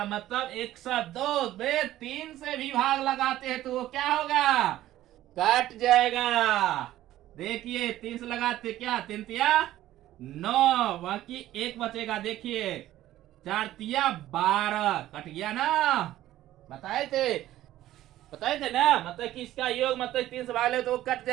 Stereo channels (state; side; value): quieter; left; 14.2 dB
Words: मतलब 102 में 3 से भी भाग लगाते हैं तो वो क्या होगा, कट जाएगा। देखिए 3 से लगाते क्या, 3 तिया 9, बाकी एक बचेगा। देखिए 4 तिया 12, कट गया ना, बताए थे ना, मतलब कि इसका योग मतलब 3 से भाग ले तो वो कट